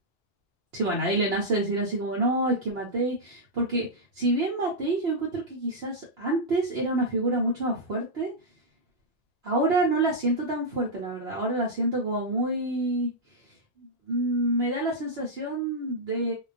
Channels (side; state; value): both; normal; correlation -0.06